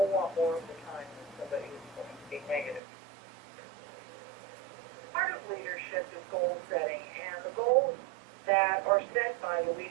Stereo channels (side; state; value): left; drops out; at 2.8 s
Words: lot more of the time than somebody who's going to be negative. Part of leadership is goal setting, and the goals that are set by the